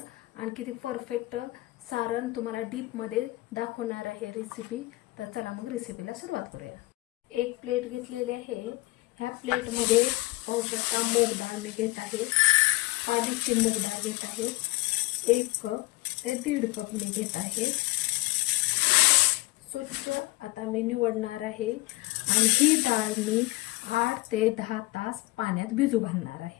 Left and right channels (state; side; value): quieter; right; 21.2 dB